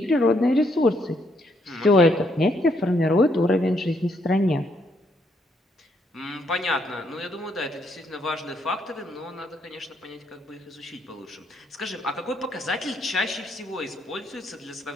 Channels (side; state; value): both; normal; correlation 0.73